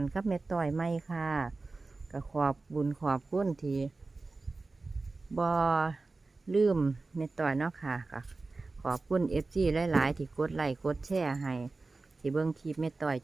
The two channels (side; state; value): left; quieter; 3.6 dB